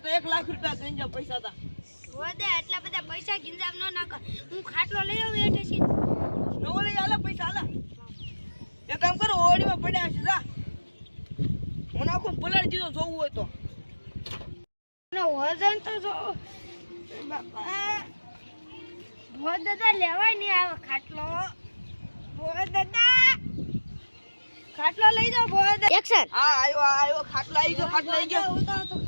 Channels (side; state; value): both; inverted; correlation -1.00